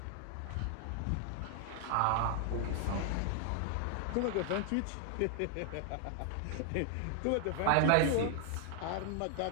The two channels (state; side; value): different; both; correlation 0.00